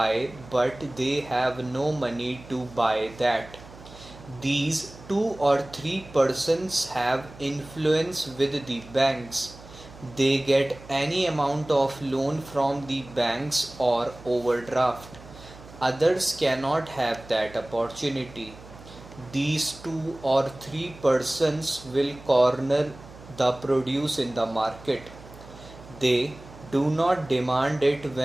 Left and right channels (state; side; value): noise; right; hum, 19 dB below the sound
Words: but they have no money to buy that. These two or three persons have influence with the banks. They get any amount of loan from the banks or overdraft. Others cannot have that opportunity. These two or three persons will corner the produce in the market. They do not demand it